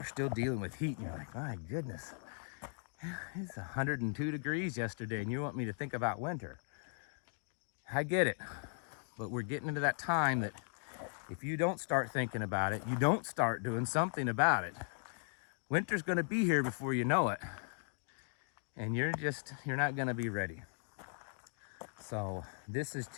still dealing with heat, and you're like, my goodness, it's 102 degrees yesterday, and you want me to think about winter. I get it, but we're getting into that time that if you don't start thinking about it, you don't start doing something about it, winter's gonna be here before you know it, and you're not gonna be ready. So this is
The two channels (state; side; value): silent; right; 52 dB below the other